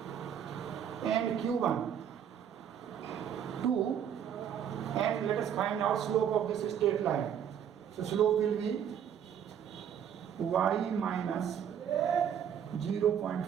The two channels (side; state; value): left; quieter; 8.8 dB